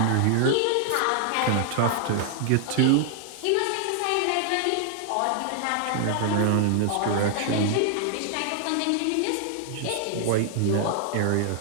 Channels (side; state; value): both; different; correlation -0.01